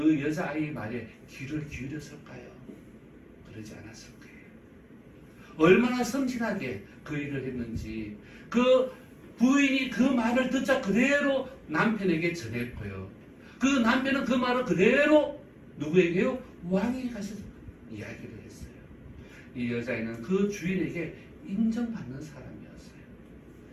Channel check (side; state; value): both; identical; correlation 1.00